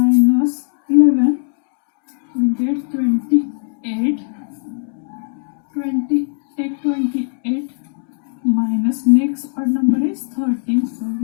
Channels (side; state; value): right; silent; digital silence